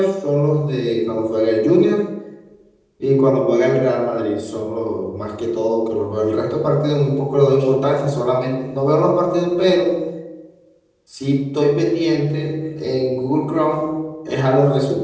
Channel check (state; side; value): identical; both; correlation 1.00